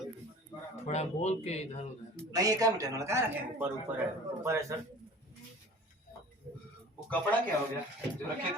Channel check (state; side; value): normal; both; correlation 0.43